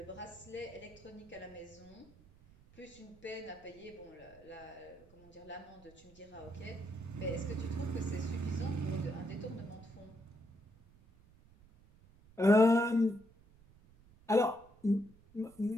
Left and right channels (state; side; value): noise; right; rumble, 25 dB below the sound